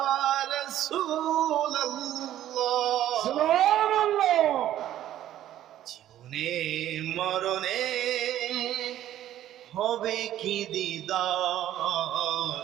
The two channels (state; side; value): quieter; left; 12.5 dB